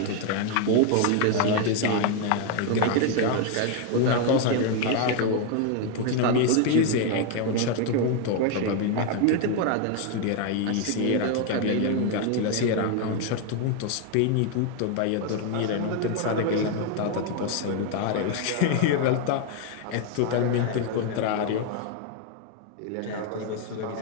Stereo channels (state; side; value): different; both; correlation 0.01